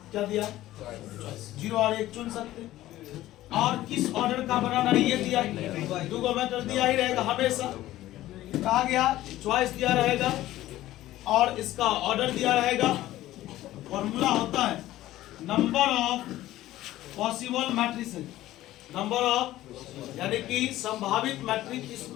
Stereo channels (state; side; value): quieter; right; 15.1 dB